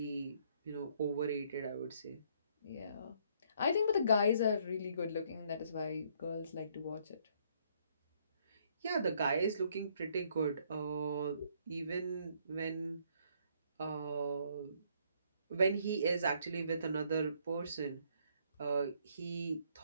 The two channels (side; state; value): both; inverted; correlation -0.67